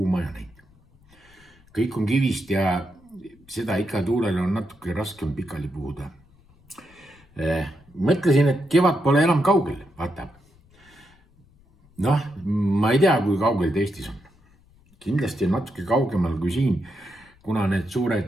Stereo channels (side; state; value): left; noise; rumble, 29 dB below the sound